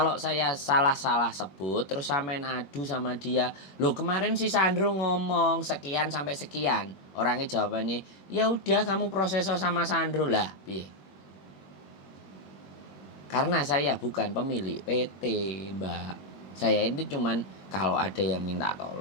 saya salah sebut terus sampean adu sama dia. Loh kemarin si Sandro ngomong sekian sampai sekian. Orangnya jawabannya, "Ya udah kamu proses sama Sandro lah." Piye? Karena saya bukan pemilik PT, Mbak. Saya ini cuman kalau ada yang minta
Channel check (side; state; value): right; late; 21 ms